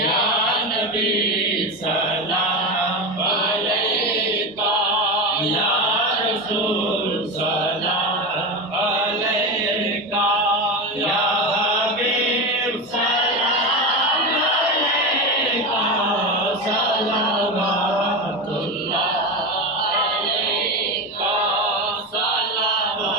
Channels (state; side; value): normal; both; correlation 0.19